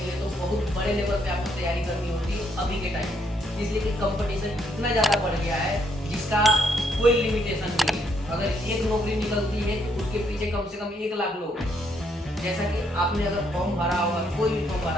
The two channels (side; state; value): both; normal; correlation 0.73